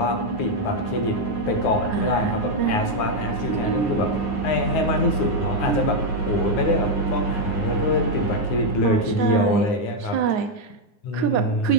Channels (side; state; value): right; late; 9.6 ms